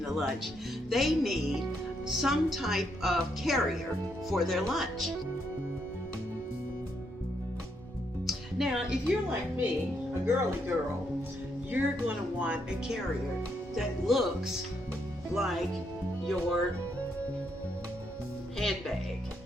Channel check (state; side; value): normal; both; correlation 0.77